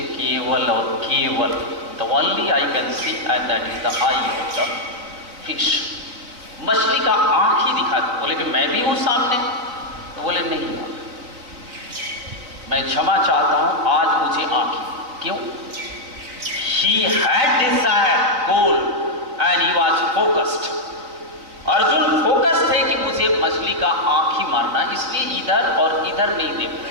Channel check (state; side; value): late; left; 4.0 ms